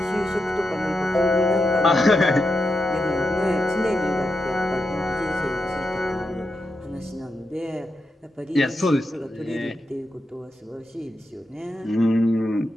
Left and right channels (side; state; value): both; normal; correlation 0.86